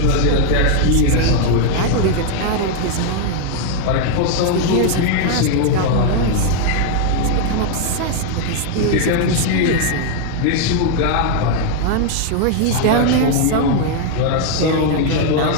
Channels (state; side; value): different; both; correlation 0.00